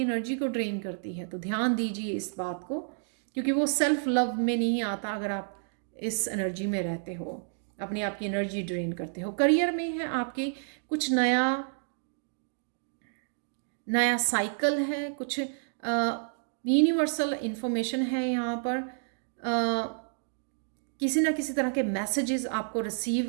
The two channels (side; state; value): left; silent; digital silence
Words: एनर्जी को ड्रेन करती है। तो ध्यान दीजिए इस बात को, क्योंकि वो सेल्फ लव में नहीं आता अगर आप इस एनर्जी में रहते हो, अपने आप की एनर्जी ड्रेन करते हो। करियर में है आपके कुछ नया साइकिल है, कुछ यूनिवर्सल इंफॉर्मेशन है यहाँ पर। किसी ना किसी तरह के मैसेजेस आपको